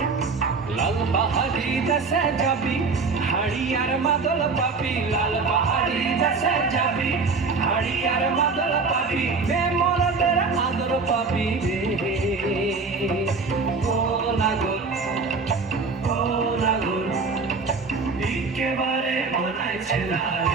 লাল পাহাড়ি দেশে যাবি হাড়ি আর মাদল পাবি, লাল পাহাড়ি দেশে যাবি হাড়ি আর মাদল পাবি, বেমরদের আদর পাবি রে। ও নাগর ও নাগর একেবারে মানাইছে না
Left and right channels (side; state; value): left; quieter; 4.4 dB